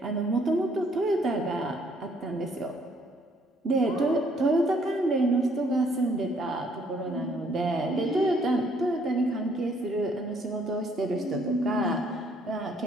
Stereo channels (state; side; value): normal; both; correlation 0.65